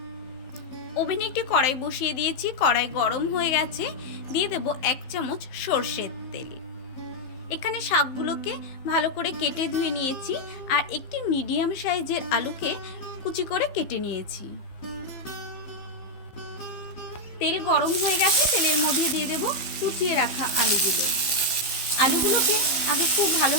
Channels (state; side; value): late; right; 15 ms